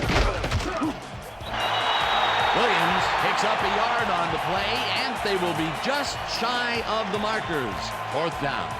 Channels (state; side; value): identical; both; correlation 1.00